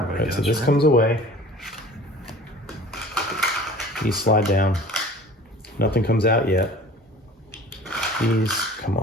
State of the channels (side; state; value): both; normal; correlation 0.44